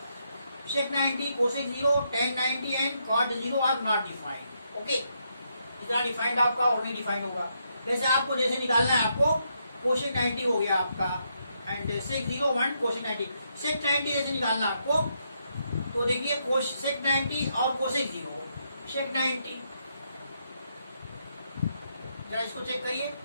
90, cosec 0, tan 90 and cot 0 are not defined. Okay, इतना डिफाइंड आपका और नहीं डिफाइंड होगा। जैसे आपको जैसे निकालना है, आपको cosec 90 हो गया आपका एंड sec 0 1 cosec 90, sec 90 जैसे निकालना आपको, तो देखिए sec 90 और cosec 0, sec 90 जरा इसको चेक करिए,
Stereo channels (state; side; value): inverted; both; correlation -0.78